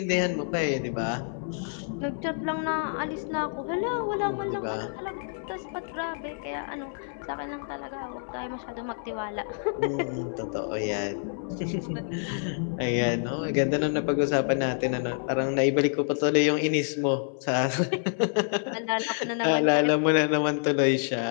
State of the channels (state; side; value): silent; right; digital silence